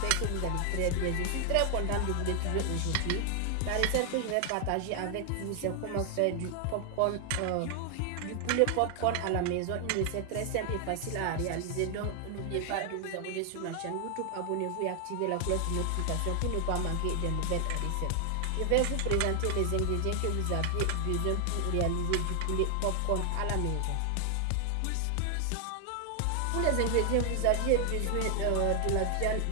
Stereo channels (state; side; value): different; both; correlation 0.00